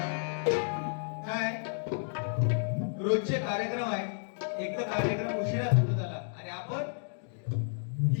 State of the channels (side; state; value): right; silent; digital silence